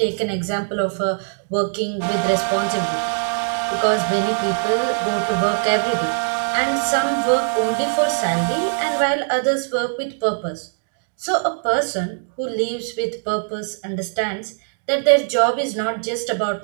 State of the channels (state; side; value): silent; left; digital silence